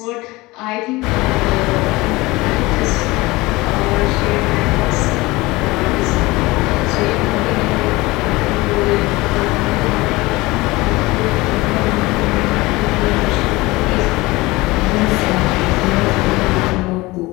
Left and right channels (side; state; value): right; quieter; 21.4 dB